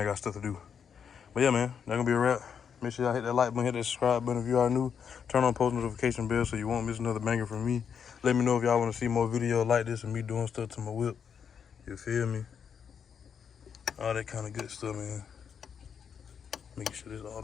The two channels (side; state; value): right; quieter; 7.3 dB